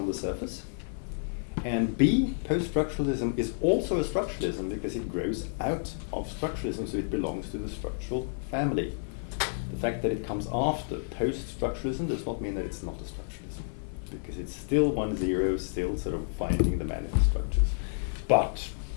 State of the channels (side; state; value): right; silent; 58 dB below the other